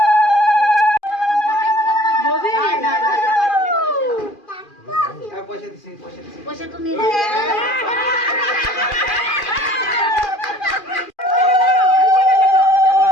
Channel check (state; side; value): late; right; 2.4 ms